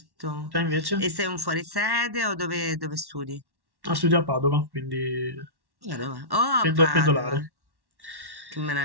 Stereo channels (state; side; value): late; left; 1.1 ms